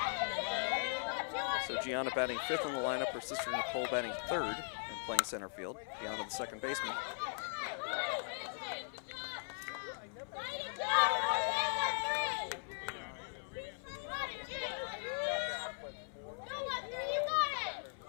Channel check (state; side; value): silent; right; 52 dB below the other